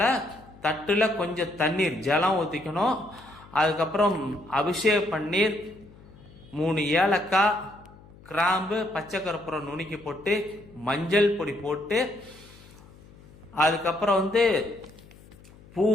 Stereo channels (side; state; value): left; noise; hum, 23 dB below the sound